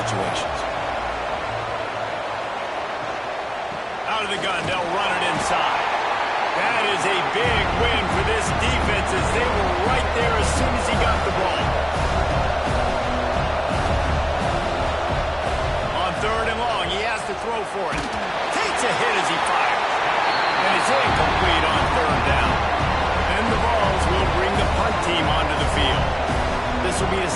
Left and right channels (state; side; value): identical; both; correlation 1.00